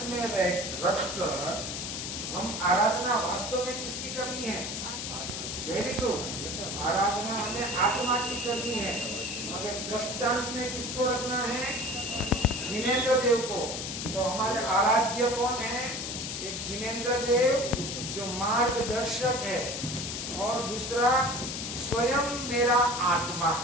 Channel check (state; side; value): noise; left; hiss, 5 dB below the sound